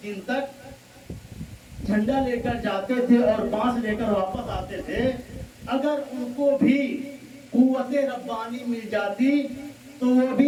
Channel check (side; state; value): both; identical; correlation 1.00